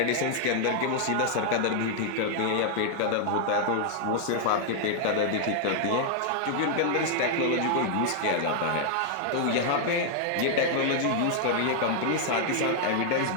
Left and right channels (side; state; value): both; different; correlation 0.00